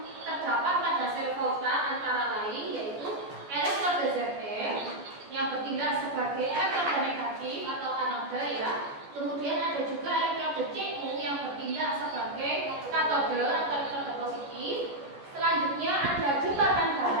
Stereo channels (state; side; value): late; left; 14 ms